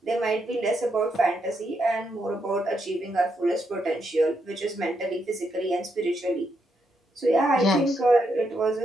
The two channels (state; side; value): normal; both; correlation 0.80